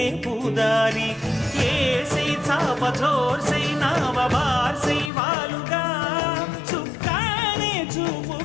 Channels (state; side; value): drops out; right; at 5.1 s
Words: పూదారి ఏసై చాప చోర్సై నావ బార్సై వాలుగా చుక్కానే